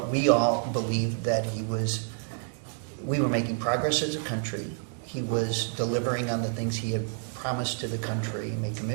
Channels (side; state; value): left; silent; 59 dB below the other